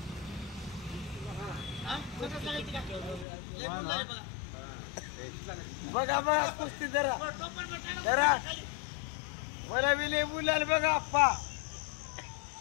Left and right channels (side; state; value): right; drops out; at 3.2 s